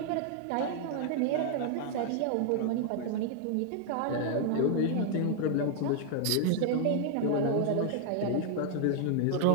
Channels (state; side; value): different; both; correlation 0.00